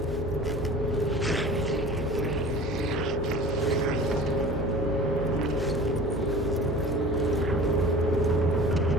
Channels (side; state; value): both; normal; correlation 0.40